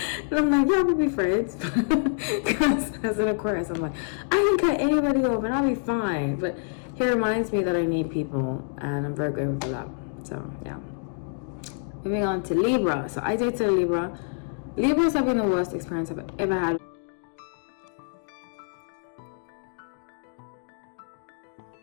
I'm like, yeah, we'll be friends. Because as an Aquarius, I'm like, I can cut anybody off and I'll be fine. But he reminds me that I need people, and I'm very grateful for that. So yeah. Moving on to Libra. So I dated a Libra. Libras have been the worst experience I've ever had.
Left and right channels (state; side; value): silent; right; digital silence